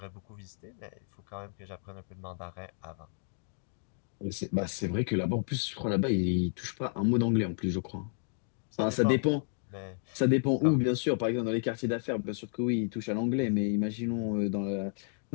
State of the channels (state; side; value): silent; right; digital silence